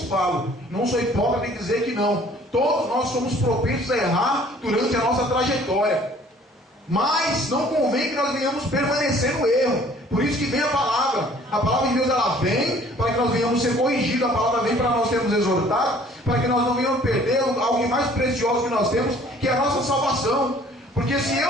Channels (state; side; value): normal; both; correlation 0.55